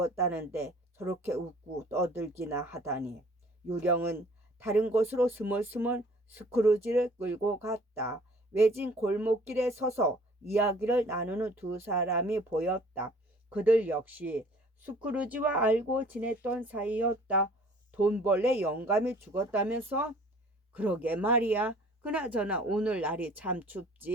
저렇게 웃고 떠들기나 하다니. 유령은 다른 곳으로 스멀스멀 스크루지를 끌고 갔다. 외진 골목길에 서서 이야기를 나누는 두 사람이 보였다. 그들 역시 스크루지와 알고 지냈던 사이였다. 돈벌레 영감이 죽었다면서? 그러게 말이야. 그나저나 오늘 날이 참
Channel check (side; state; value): both; normal; correlation 0.53